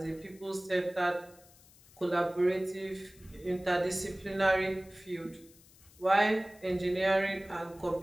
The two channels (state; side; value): noise; left; hiss, 25 dB below the sound